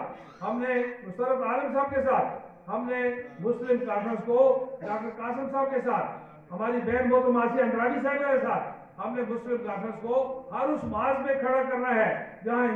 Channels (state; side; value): identical; both; correlation 1.00